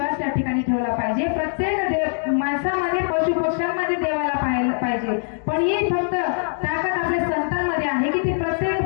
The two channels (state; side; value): silent; right; digital silence